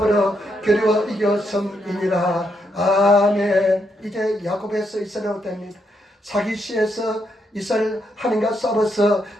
겨루어 이겼음이니라. 아멘. 이제 야곱에서 이스라엘로 됩니다. 사기시에서 이스라엘 하나님과 싸워서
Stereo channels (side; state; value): both; normal; correlation 0.79